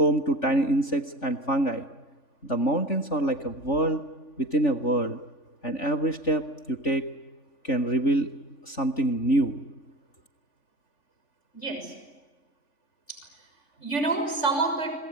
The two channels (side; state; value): right; late; 3.4 ms